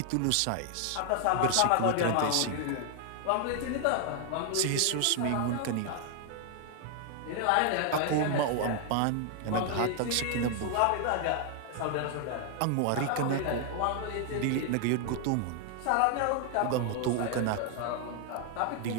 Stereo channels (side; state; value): both; different; correlation 0.00